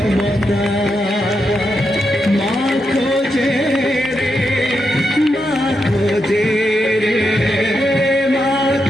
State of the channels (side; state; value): both; normal; correlation 0.84